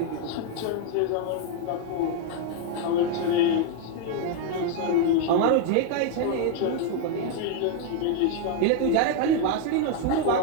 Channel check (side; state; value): both; different; correlation 0.00